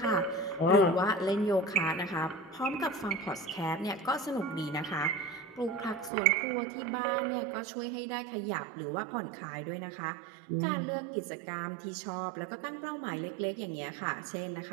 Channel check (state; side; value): drops out; left; at 6.1 s